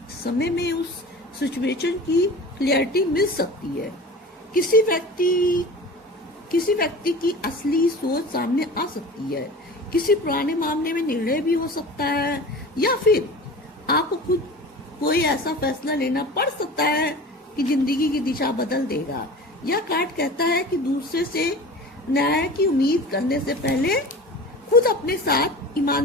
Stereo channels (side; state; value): both; normal; correlation 0.36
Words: समय में उस सिचुएशन की क्लियरिटी मिल सकती है। किसी व्यक्ति की असली सोच सामने आ सकती है। किसी पुराने मामले में निर्णय भी हो सकता है, या फिर आपको खुद कोई ऐसा फैसला लेना पड़ सकता है कि जिंदगी की दिशा बदल देगा। यह कार्ड कहता है कि दूसरे से न्याय की उम्मीद करने से पहले खुद अपने साथ